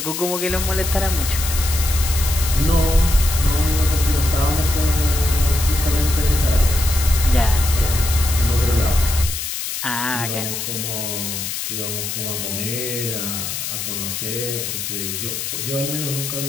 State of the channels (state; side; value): noise; left; hiss, 4 dB below the sound